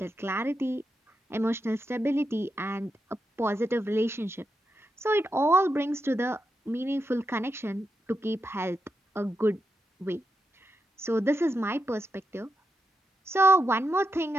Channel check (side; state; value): both; normal; correlation 0.86